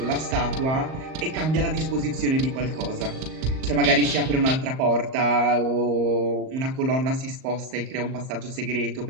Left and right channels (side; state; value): left; late; 38 ms